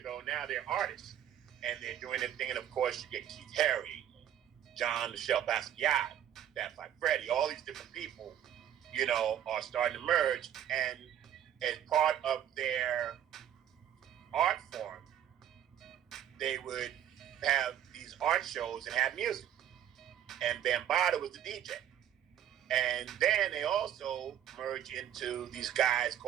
Now they're artists. And they're doing their thing. And of course, you get Keith Haring, John Michel Basquiat, Fat Five Freddy, all these different people, are starting to merge. And as part of their art form, they would have these art shows and have music. And Bambaataa was the DJ. And then they also merge into these guys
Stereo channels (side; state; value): left; quieter; 10.5 dB